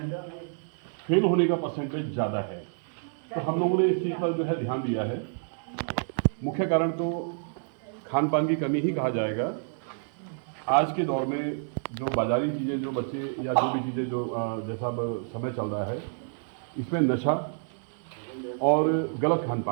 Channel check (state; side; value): silent; left; digital silence